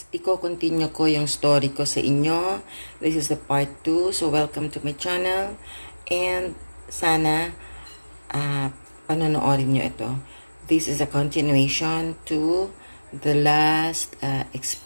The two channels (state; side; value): inverted; both; correlation -1.00